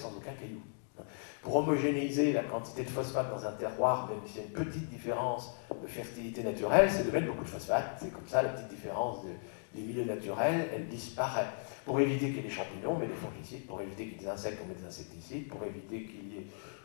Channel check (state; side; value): silent; right; digital silence